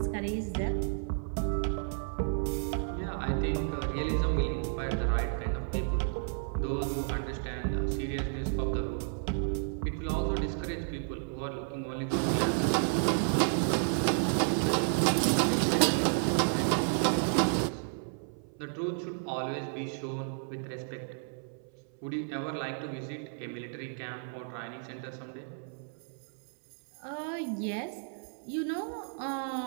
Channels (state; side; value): silent; left; 56 dB below the other